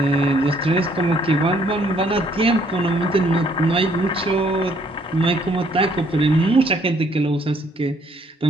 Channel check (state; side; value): normal; both; correlation 0.65